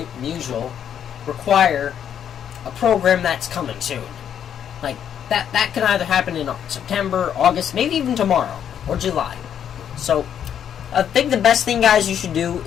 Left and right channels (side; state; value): right; quieter; 9.1 dB